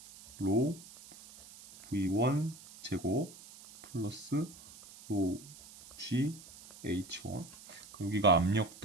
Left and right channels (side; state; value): right; noise; hiss, 19 dB below the sound